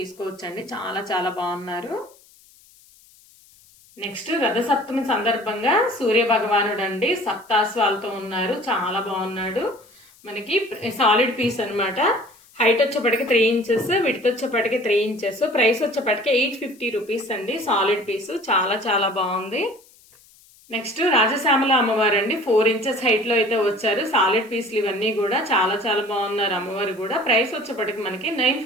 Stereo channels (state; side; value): noise; left; hiss, 28 dB below the sound